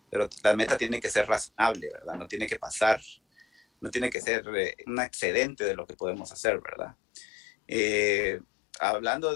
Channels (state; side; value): drops out; right; at 4.2 s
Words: pero la meta tiene que ser razonable, ¿verdad? No tiene que pasar, no tiene que ser un excedente de lo que podemos hacer, ¿verdad? Eh, Hablando